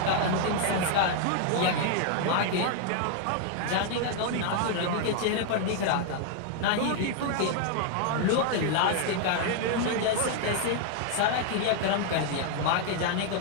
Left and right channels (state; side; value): different; both; correlation 0.00